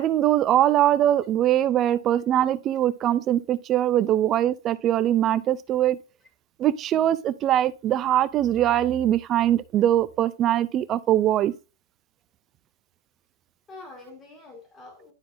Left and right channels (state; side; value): quieter; left; 11.7 dB